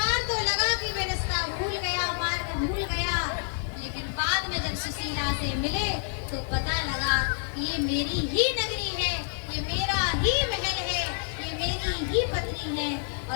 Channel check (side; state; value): right; silent; digital silence